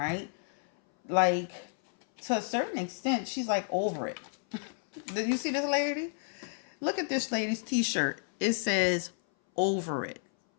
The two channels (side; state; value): right; silent; 57 dB below the other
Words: To a certain extent, she's over it. Did you see this lady? Look at this lady's t-shirt. It says, over it.